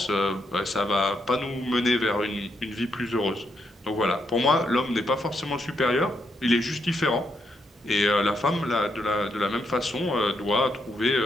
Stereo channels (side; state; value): both; normal; correlation 0.79